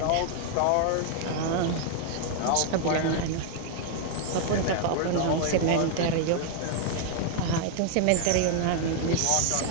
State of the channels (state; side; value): different; both; correlation 0.00